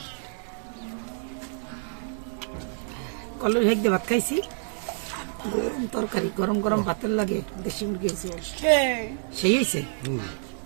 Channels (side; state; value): left; silent; digital silence